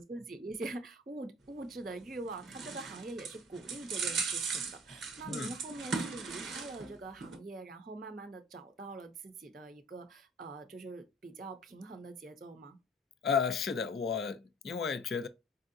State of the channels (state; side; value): normal; both; correlation 0.47